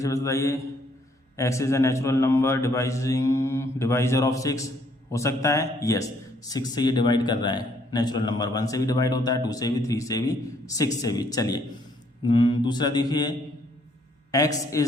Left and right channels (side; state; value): both; normal; correlation 0.67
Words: बताइए। X is a natural number divisor of 6 हो सकता है, यस, 6 से ये डिवाइड कर रहा है। नेचुरल नंबर 1 से भी डिवाइड होता है, 2 से भी, 3 से भी, 6 से भी। चलिए दूसरा देखिए, x